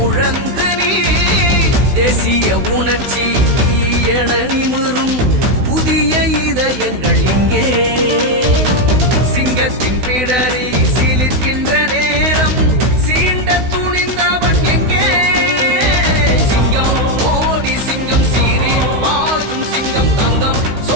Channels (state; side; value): late; left; 16 ms